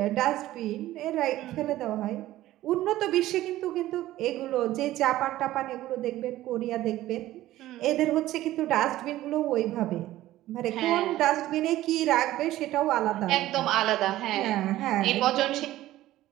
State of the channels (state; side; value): quieter; left; 15.2 dB